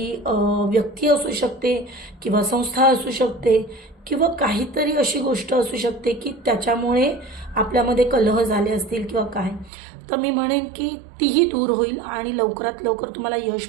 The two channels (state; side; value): drops out; left; at 9.7 s